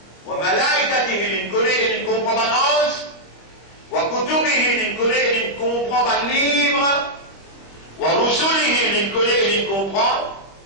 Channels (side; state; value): right; late; 25 ms